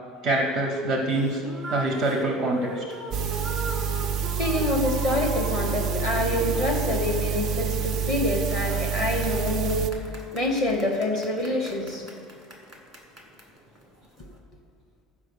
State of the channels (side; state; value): both; normal; correlation 0.36